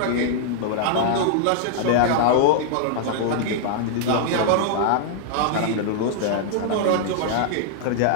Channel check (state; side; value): different; both; correlation -0.01